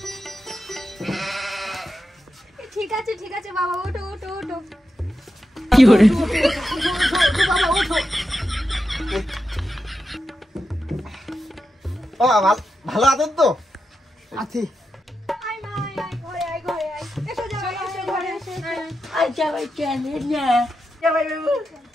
ঠিক আছে বাবা, ওঠো। কি করে? বাবা ওঠো। ভালো আছেন তো? আছি। ঘরে আয়। এসো জামাই, এসো ঘরে এসো। আর জামাই কেন না? জামাই বাবু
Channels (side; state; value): both; normal; correlation 0.88